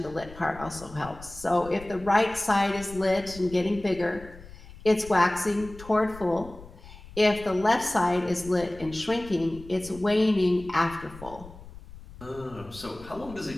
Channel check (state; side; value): noise; left; rumble, 17 dB below the sound